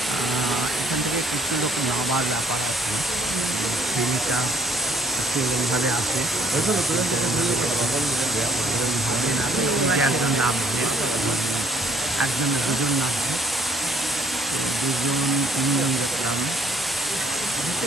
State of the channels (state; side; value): normal; both; correlation 0.64